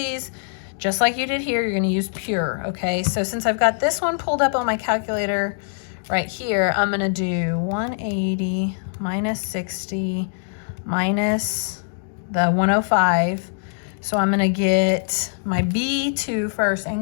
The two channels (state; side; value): silent; right; digital silence